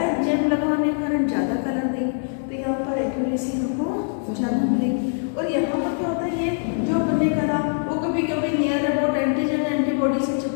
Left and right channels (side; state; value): right; silent; digital silence